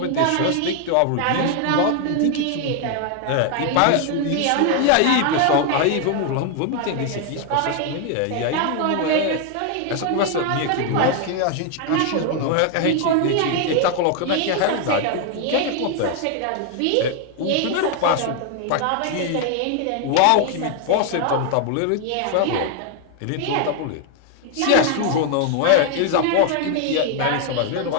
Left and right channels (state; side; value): different; both; correlation 0.00